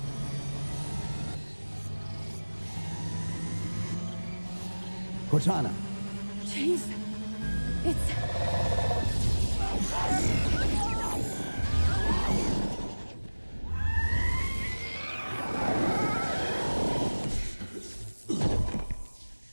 Cortana! Chief, it's...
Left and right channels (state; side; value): inverted; both; correlation -1.00